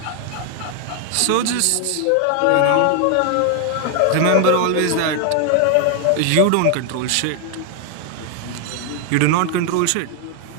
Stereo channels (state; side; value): different; both; correlation 0.00